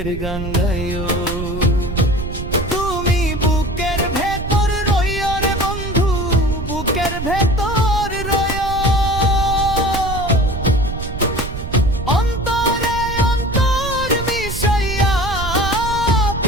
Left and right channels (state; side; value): noise; right; rumble, 7 dB below the sound